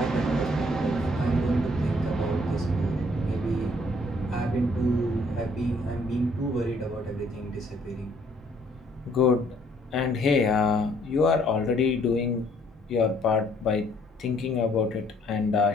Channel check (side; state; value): both; normal; correlation 0.63